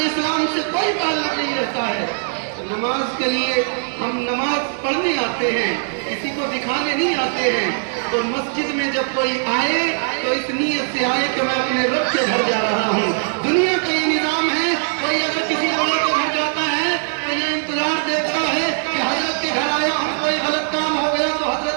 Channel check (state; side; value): silent; left; digital silence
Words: اسلام سے کوئی تعلق نہیں رہتا ہے۔ نماز کے لیے ہم نماز پڑھنے آتے ہیں، کسی کو دکھانے نہیں آتے ہیں، تو مسجد میں جب کوئی آئے تو اس نیت سے آئے کہ میں اپنے رب کے گھر جا رہا ہوں۔ دنیا کا یہ نظام ہے، کوئی اگر کسی بڑے کے گھر جاتا ہے تو یہ انتظار دیتا ہے کہ حضرت کے گھر آیا ہوں، کوئی غلط کام ہو گیا تو